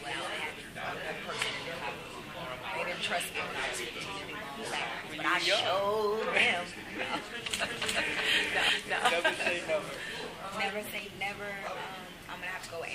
without having a person to do it. They didn't trust me when I was 15 to do my own backgrounds. But I showed them. No. Never say never. Never say never. I'm going to have to go with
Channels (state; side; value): identical; both; correlation 1.00